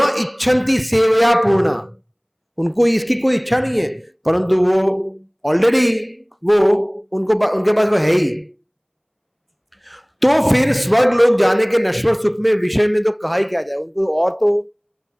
इच्छन्ति सेवया पूर्णा, उनको इसकी कोई इच्छा नहीं है, परंतु वो ऑलरेडी वो उनके पास वो है ही। तो फिर स्वर्ग लोग जाने के नश्वर सुख में विषय में तो कहा ही क्या जाए, उनको और तो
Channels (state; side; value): identical; both; correlation 1.00